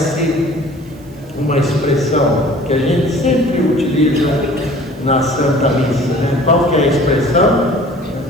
uma expressão que a gente sempre utiliza na Santa Missa, né? Qual que é a expressão?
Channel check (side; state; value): right; noise; hiss, 29 dB below the sound